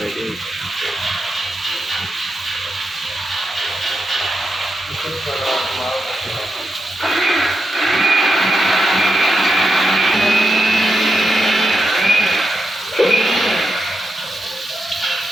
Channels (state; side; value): normal; both; correlation 0.86